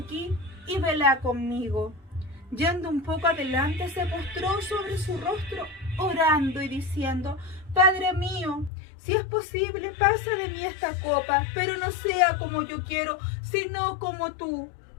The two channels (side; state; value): right; drops out; at 8.7 s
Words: y velad conmigo. Yendo un poco adelante, se postró sobre su rostro, orando y diciendo: Padre mío, si es posible, pasa de mí esta copa, pero no sea como yo quiero, sino como tú.